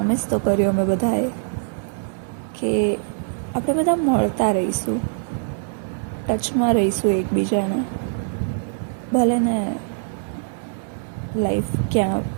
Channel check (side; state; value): left; silent; digital silence